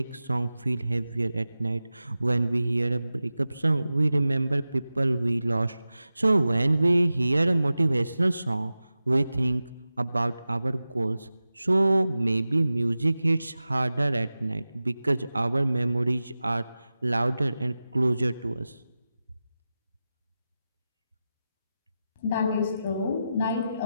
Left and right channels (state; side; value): inverted; both; correlation -0.94